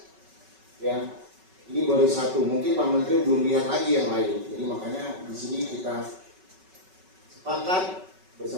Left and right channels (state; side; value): late; left; 5.3 ms